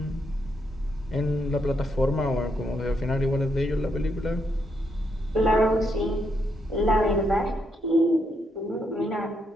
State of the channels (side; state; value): both; normal; correlation 0.78